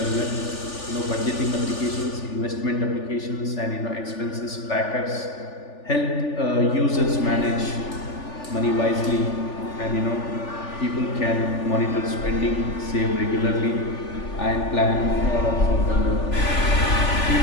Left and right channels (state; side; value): late; right; 3.4 ms